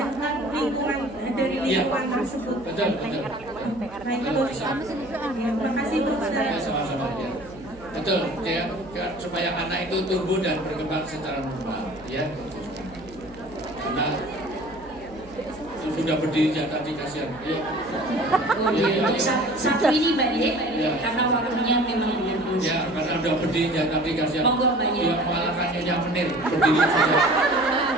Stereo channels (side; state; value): right; noise; hum, 21 dB below the sound